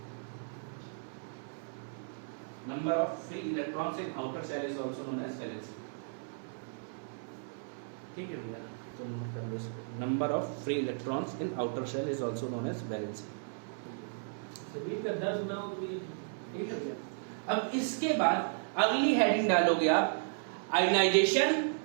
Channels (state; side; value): silent; left; 55 dB below the other